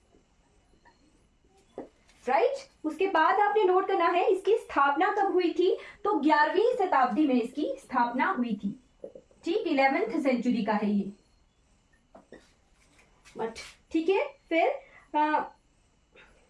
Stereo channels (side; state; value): both; identical; correlation 1.00